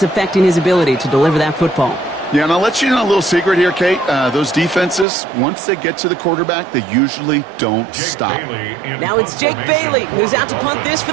affecting his ability to deliver that football. Yeah, and I'll let you know a little secret here, Kate. Those defenses, once they get to the quarterback, they usually don't stop. Now it's Jake Bailey who's out to punt this for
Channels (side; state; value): left; drops out; at 5.1 s